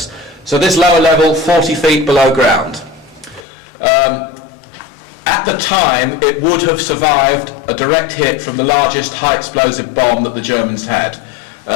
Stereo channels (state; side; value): drops out; right; at 3.4 s